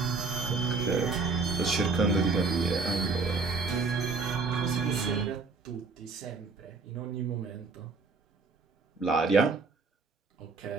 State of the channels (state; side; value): quieter; left; 4.3 dB